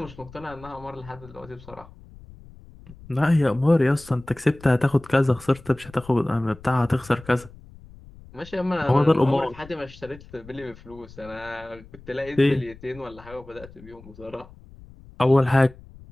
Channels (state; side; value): noise; left; rumble, 20 dB below the sound